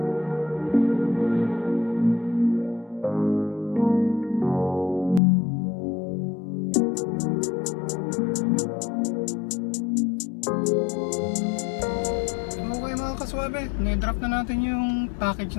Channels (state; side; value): drops out; right; at 5.2 s